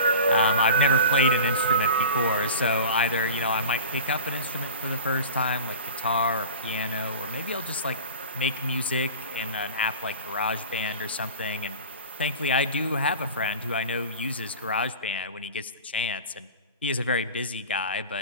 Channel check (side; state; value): both; inverted; correlation -0.34